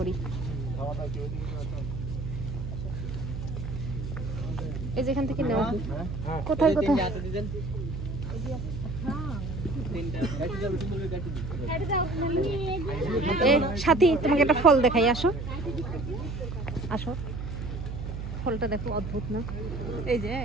করি এই যেখান থেকে নেওয়া কোথায় কোথায় সাথী তোমাকে একটা ফল দেখাই আসো আসো ফলটা দেখো অদ্ভুত না এই যে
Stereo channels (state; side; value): noise; right; hum, 6 dB below the sound